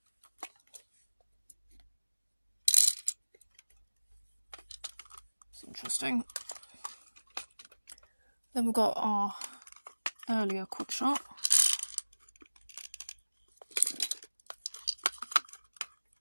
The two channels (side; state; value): both; inverted; correlation -1.00